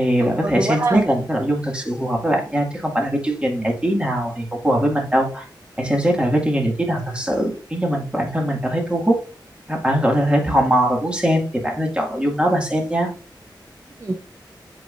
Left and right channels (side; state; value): both; normal; correlation 0.85